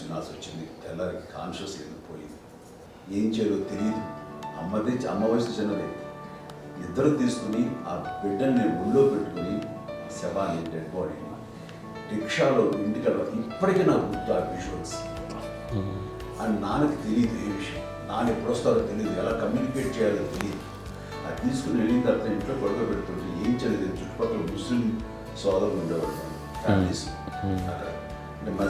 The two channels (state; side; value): identical; both; correlation 1.00